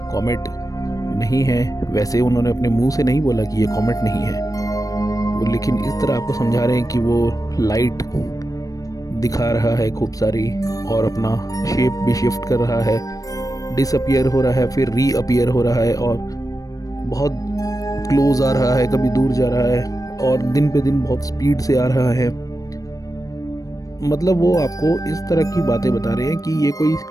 कॉमेट नहीं है। वैसे उन्होंने अपने मुंह से नहीं बोला कि ये कॉमेट नहीं है वो, लेकिन इस तरह आपको समझा रहे हैं कि वो लाइट दिखा रहा है खूब सारी और अपना शेप भी शिफ्ट कर रहा है, डिसअपियर हो रहा है, फिर रीअपियर हो रहा है और बहुत क्लोज आ रहा है, कभी दूर जा रहा है और दिन पे दिन बहुत स्पीड से आ रहा है। मतलब वो आपको इस तरह की बातें बता रहे हैं कि ये कोई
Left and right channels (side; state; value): right; late; 0.17 ms